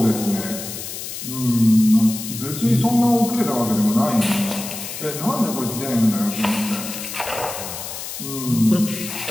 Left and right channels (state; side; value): noise; left; hiss, 8 dB below the sound